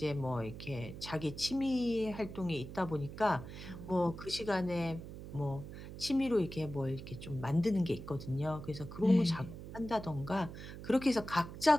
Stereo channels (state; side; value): noise; right; hum, 11 dB below the sound